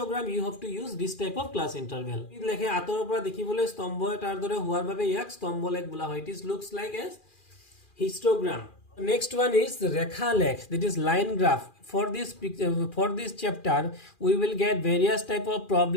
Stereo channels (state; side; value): late; right; 2.4 ms